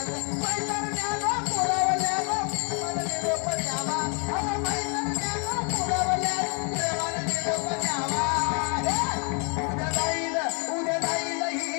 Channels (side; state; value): right; quieter; 37.6 dB